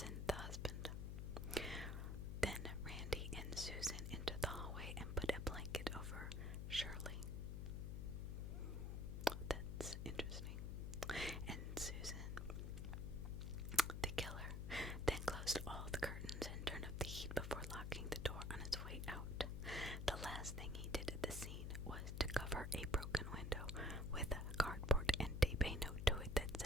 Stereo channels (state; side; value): noise; left; hum, 3 dB below the sound